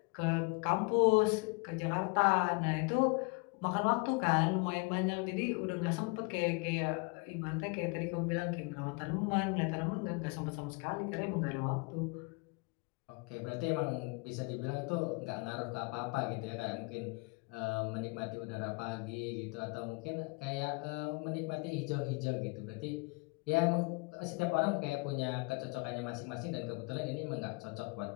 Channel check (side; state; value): right; quieter; 30.0 dB